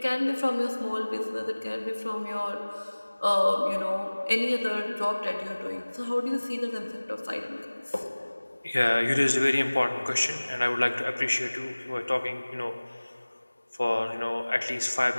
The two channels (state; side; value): inverted; both; correlation -1.00